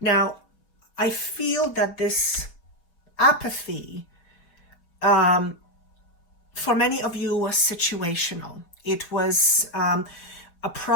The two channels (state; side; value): late; right; 5.7 ms